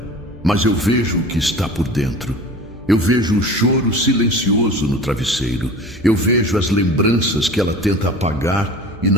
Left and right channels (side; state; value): left; noise; hum, 21 dB below the sound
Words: Mas eu vejo o que está por dentro. Eu vejo o choro silencioso no travesseiro. Eu vejo as lembranças que ela tenta apagar e